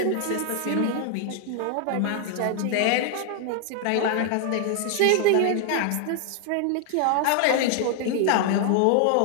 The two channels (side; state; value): both; different; correlation 0.00